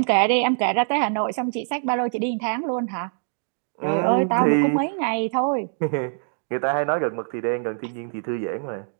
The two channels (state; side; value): silent; left; digital silence